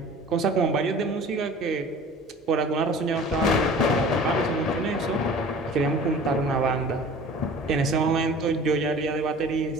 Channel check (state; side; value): normal; both; correlation 0.44